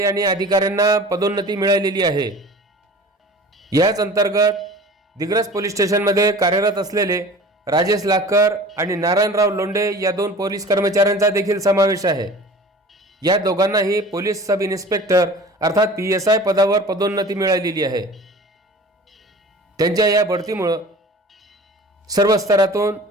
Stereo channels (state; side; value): normal; both; correlation 0.41